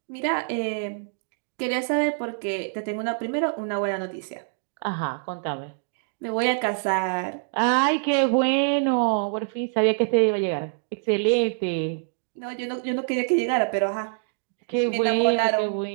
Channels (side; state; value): left; silent; digital silence